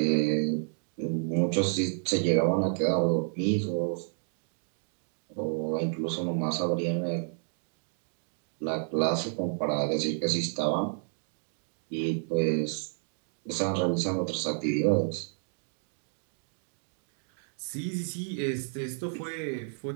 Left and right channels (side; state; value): left; silent; digital silence